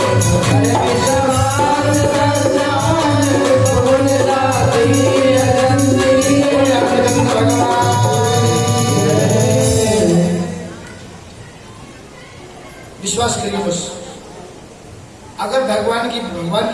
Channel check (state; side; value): identical; both; correlation 1.00